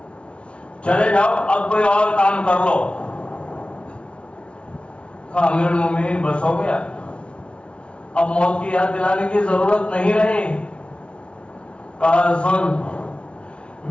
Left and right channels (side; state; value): right; late; 0.059 ms